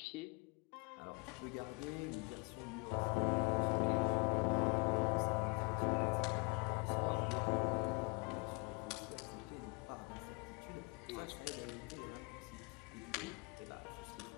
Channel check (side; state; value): right; quieter; 30.6 dB